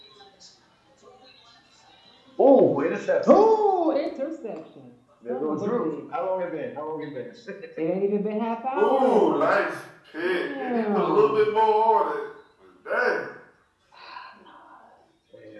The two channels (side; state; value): both; identical; correlation 1.00